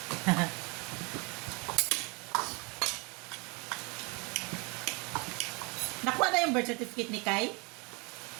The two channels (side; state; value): left; quieter; 29.9 dB